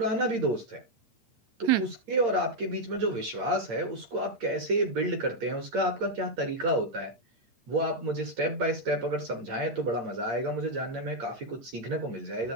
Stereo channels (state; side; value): late; left; 8.7 ms